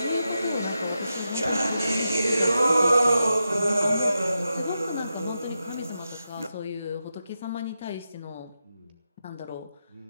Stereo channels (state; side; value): inverted; both; correlation -0.88